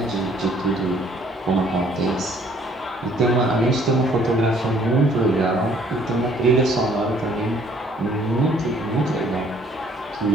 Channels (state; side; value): normal; both; correlation 0.60